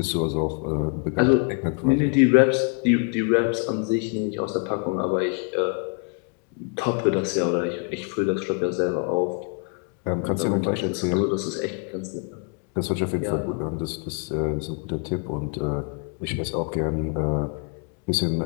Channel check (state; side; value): quieter; right; 36.4 dB